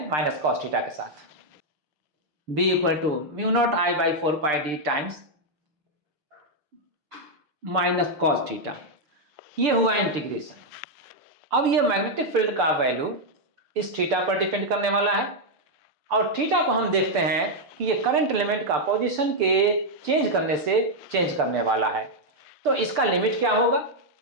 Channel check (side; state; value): left; late; 6.8 ms